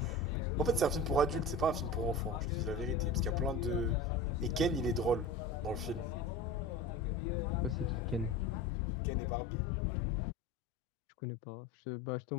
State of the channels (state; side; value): drops out; right; at 8.7 s